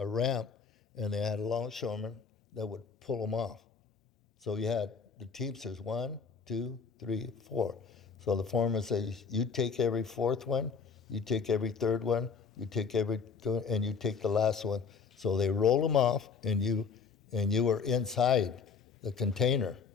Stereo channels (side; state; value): right; quieter; 5.6 dB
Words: ramp, and they had a longshoreman that would pull them off. So you had the teamsters 1, 2, 3, 4. So the foreman says, you take every 4th one, you take every 3rd one, you take and you take the last one. So they roll them off, and you were inside the container,